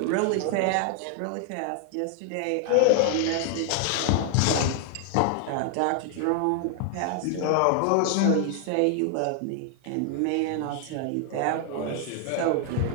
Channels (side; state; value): both; different; correlation 0.00